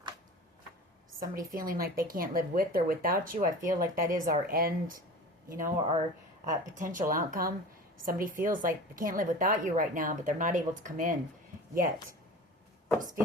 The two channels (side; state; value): both; normal; correlation 0.37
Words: Somebody feeling like they can't live with or without you. I feel like that is our end, you know, our potential outcome. Somebody feels like they can't live without you right now, but they're not able to come in yet. Just